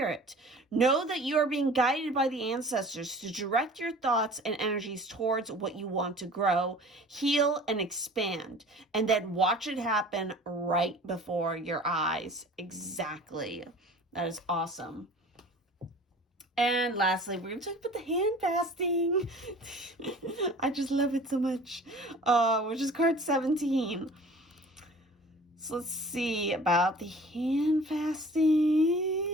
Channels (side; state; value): both; normal; correlation 0.45